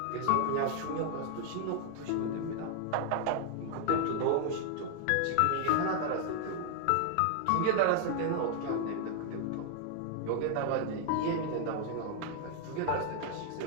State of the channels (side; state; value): both; different; correlation 0.00